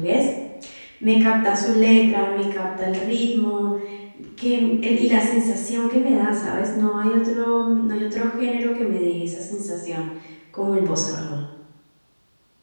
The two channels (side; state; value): both; inverted; correlation -1.00